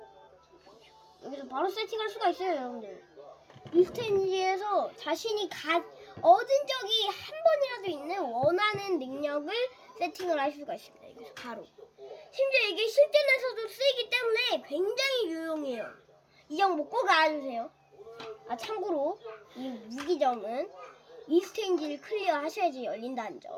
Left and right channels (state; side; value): identical; both; correlation 1.00